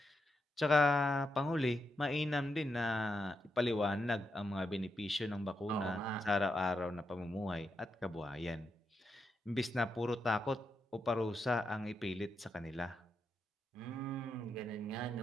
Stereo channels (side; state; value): both; normal; correlation 0.84